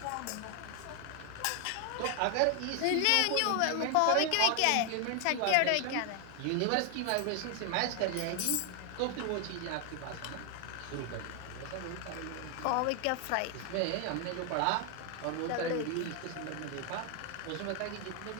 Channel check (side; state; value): both; different; correlation 0.00